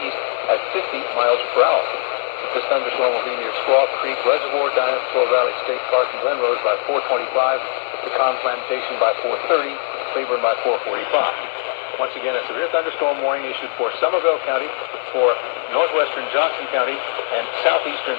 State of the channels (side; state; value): right; silent; 60 dB below the other